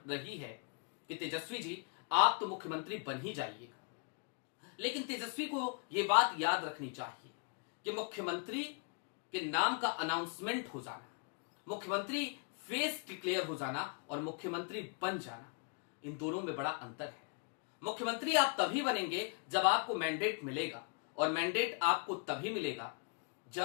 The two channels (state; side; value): quieter; right; 38.7 dB